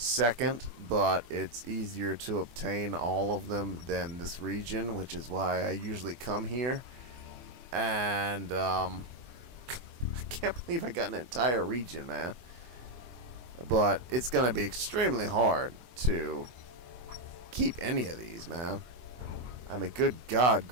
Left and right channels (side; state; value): left; late; 24 ms